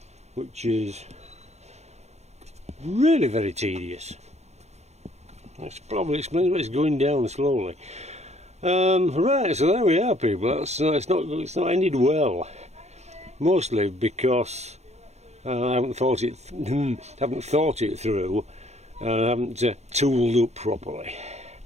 which is really very tedious. That's probably explains why it's going down slowly. Right, so there we are, people. It's not ended well. Mostly because I haven't thought it through, and I haven't tooled up properly.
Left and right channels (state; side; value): late; left; 0.32 ms